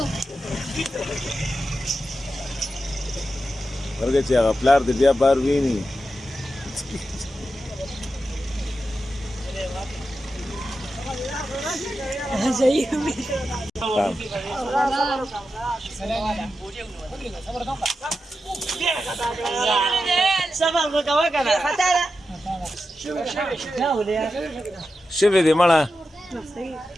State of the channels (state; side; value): normal; both; correlation 0.90